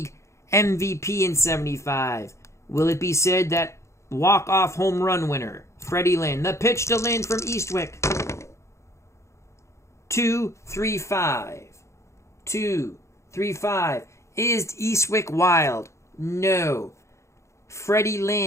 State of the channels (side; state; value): right; late; 0.14 ms